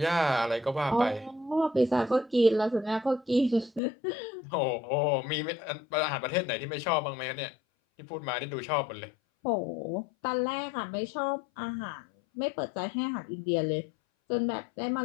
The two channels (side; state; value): right; drops out; at 3.8 s